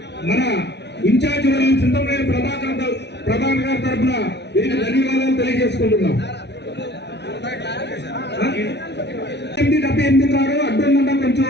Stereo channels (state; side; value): late; right; 0.50 ms